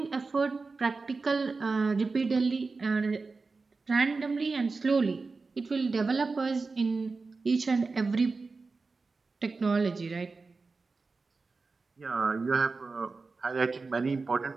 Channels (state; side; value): quieter; left; 4.1 dB